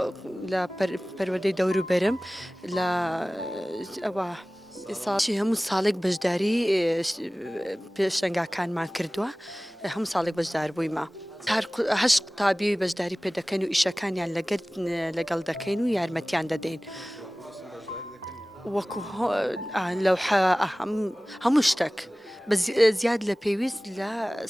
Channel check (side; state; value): both; normal; correlation 0.98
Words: لە پەروەردەی دەوروبەرم لە ئەوە ساڵی هەموو ساڵێک بەشداری پێشەنگاکانمان کردووە هەموو ساڵێک بەشدار بوویمە. هەشت قوتابی بەشداری پێ دەکەن و ئیشەکانیان لەگەڵ دەکەین و یارمەتیان دەدەین. وەکو لەو هەموو شتێک زیاد لە پێویست لە